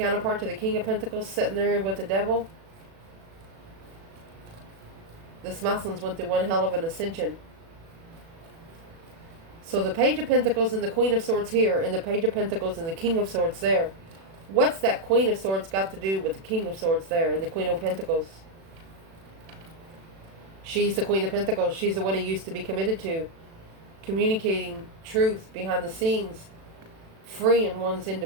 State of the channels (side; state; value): left; late; 36 ms